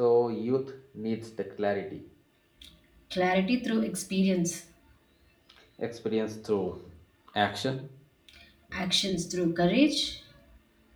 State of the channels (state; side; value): identical; both; correlation 1.00